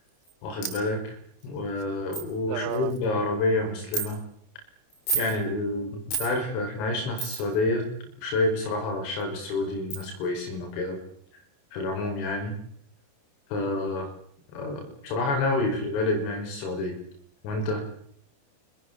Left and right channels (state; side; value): late; right; 28 ms